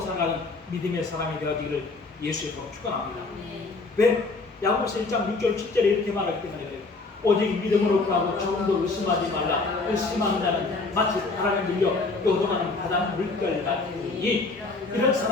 살아가는 믿음의 사람이 되어지기를 예수의 이름으로 축원합니다. 왜? 야고보서 1장 6절 7절에 이렇게 말하기 때문에 그래요. 오직 믿음으로 구하고 조금도 의심하지 말라. 의심하는 자는 마치 바람에 밀려 요동하는 바다 물결 같으니 이런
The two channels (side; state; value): right; quieter; 3.7 dB